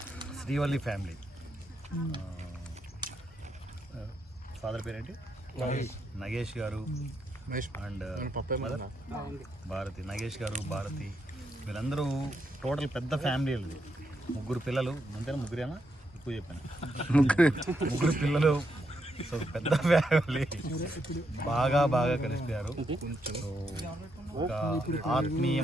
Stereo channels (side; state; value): both; normal; correlation 0.80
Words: శ్రీవల్లి ఫ్యామిలీ, ఫాదర్ పేరేంటి, నగేష్ గారు అండ్ భారతి, నగేష్ గారు, భారతి, వీళ్ళందరూ టోటల్ పెద్ద ఫ్యామిలీ. ముగ్గురు పిల్లలు, అంతేనా? ముగ్గురేనా? ఎక్కువ చెప్పాను, ముగ్గురు పిల్లలు. సో పెద్ద ఫ్యామిలీ, బాగా కలిసిపోయారు. సో ఒక